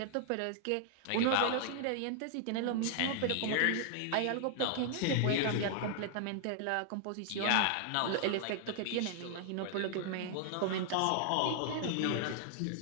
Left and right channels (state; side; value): different; both; correlation 0.00